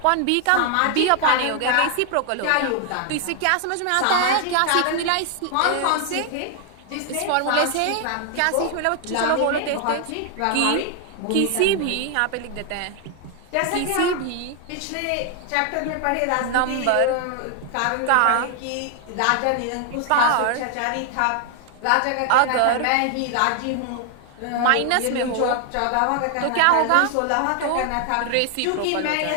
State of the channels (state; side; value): different; both; correlation 0.00